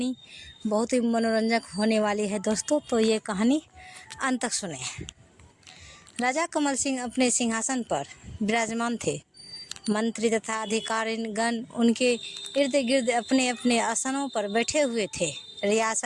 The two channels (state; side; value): identical; both; correlation 1.00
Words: बहुत ही मनोरंजक होने वाली है दोस्तों, तो ये कहानी अंत तक सुने। राजा कमल सिंह अपने सिंहासन पर विराजमान थे। मंत्री तथा अधिकारीगण उनके इर्द गिर्द अपने अपने आसनों पर बैठे हुए थे।